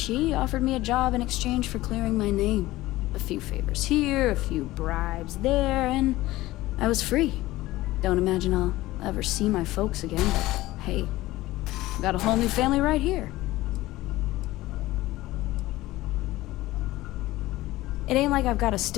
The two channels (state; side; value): quieter; right; 17.5 dB